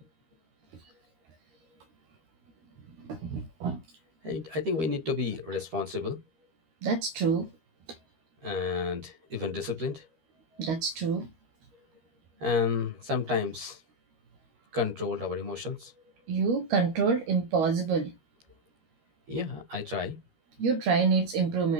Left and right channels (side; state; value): left; late; 13 ms